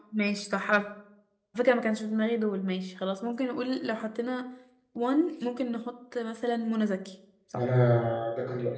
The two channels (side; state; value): both; identical; correlation 1.00